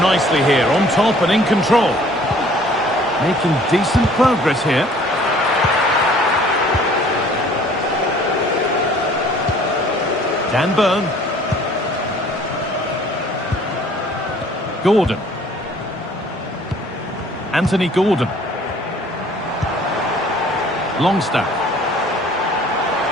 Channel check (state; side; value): normal; both; correlation 0.54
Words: nicely here, on top and in control. Making decent progress here. Dan Burn. Gordon. Anthony Gordon. Longstaff.